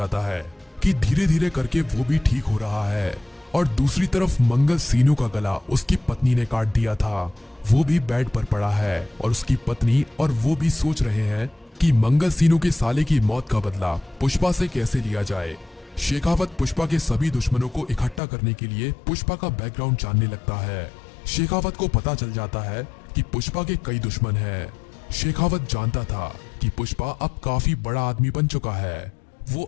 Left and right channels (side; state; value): right; drops out; at 18.2 s